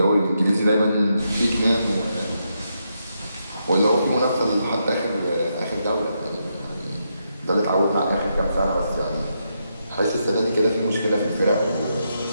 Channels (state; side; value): inverted; both; correlation -0.82